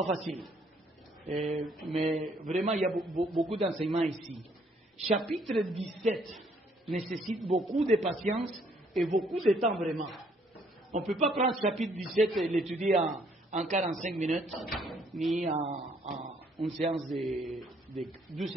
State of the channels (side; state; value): both; normal; correlation 0.66